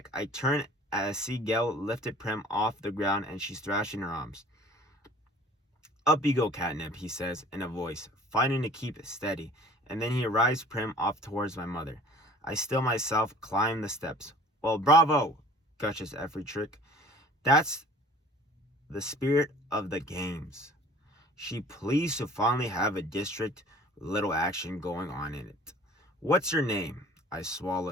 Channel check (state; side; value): normal; both; correlation 0.49